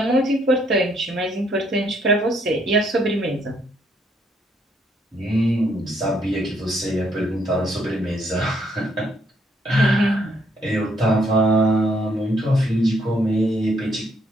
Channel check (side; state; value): both; normal; correlation 0.71